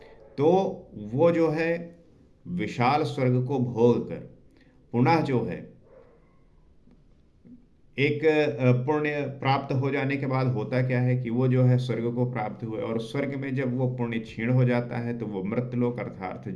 तो वो जो है विशाल स्वर्ग को भोग कर पुनः जो है एक पुण्य प्राप्त हो जाने के बाद होता क्या है कि वो जो है स्वर्ग को प्राप्त हुए, और स्वर्ग में जब वो पुण्य क्षीण हो जाता है तो वो मृत्युलोक अर्थात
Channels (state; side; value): identical; both; correlation 1.00